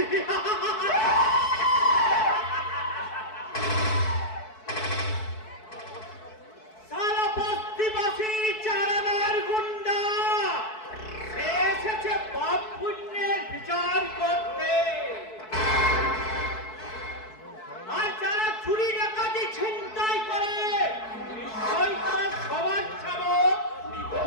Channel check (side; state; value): right; late; 4.6 ms